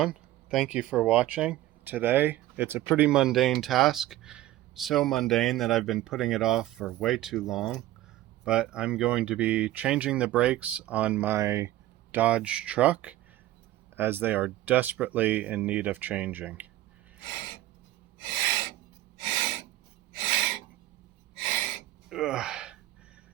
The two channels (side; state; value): left; quieter; 15.1 dB